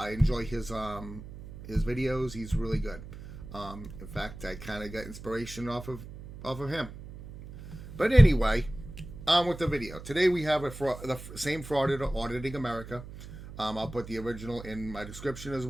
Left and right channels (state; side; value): noise; right; hum, 13 dB below the sound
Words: enjoy his videos. He's really good. In fact, I kind of got inspiration off of him. But anyway, on with the video. Today we have the same frauditor auditing America. I'll put the original in my description as